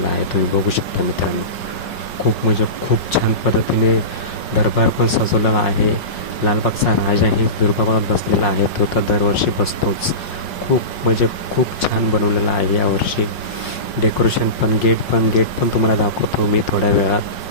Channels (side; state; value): right; late; 5.6 ms